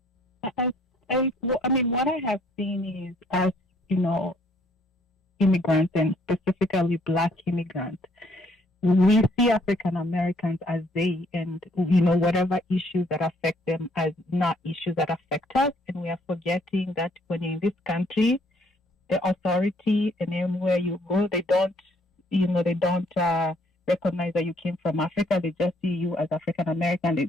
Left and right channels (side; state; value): both; normal; correlation 0.65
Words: I mean, what I have seen is, as you know, immigrants, and specifically Black immigrants, we see African Americans as they, and you know, whatever issues that affect them as not issues that affect us, and we are forgetting that when you're in this country, the authority, and anywhere you go, they don't recognize that you came from Africa. They just see you as African American. They